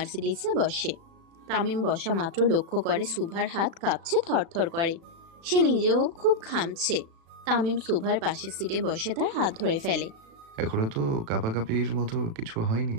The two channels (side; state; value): left; late; 36 ms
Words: বসে। তামিম বসা মাত্র লক্ষ্য করে সুভার হাত কাঁপছে, থরথর করে। সে নিজেও খুব ঘামছে। তামিম সুভার পাশের সিটে বসে তার হাত ধরে ফেলে। এখনো তো কাঁপাকাঁপির মতো কিছু হয়নি,